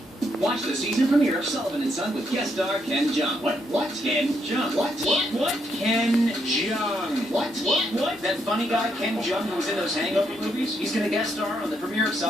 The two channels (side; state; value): both; normal; correlation 0.76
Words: Watch the season premiere of Sullivan and Son with guest star Ken Jeong. What? Ken Jeong. What? Ken Jeong. What? That funny guy Ken Jeong who was in those Hangover movies? He's gonna guest star on the premiere of